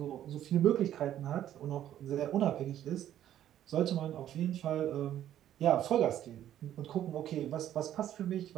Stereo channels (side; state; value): left; quieter; 11.5 dB